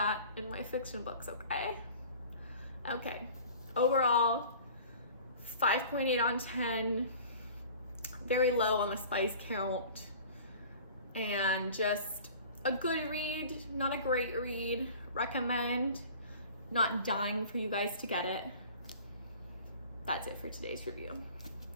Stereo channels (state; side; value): inverted; both; correlation -0.44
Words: in my fiction books, okay? Okay, overall, 5.8 on 10, very low on the spice count, and just a good read, not a great read. Recommend, not dying for you guys to get it. That's it for today's review.